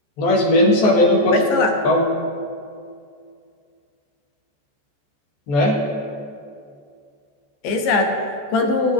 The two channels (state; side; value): late; right; 14 ms